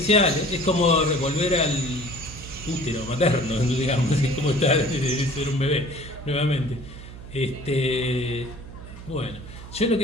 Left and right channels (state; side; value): noise; right; hum, 14 dB below the sound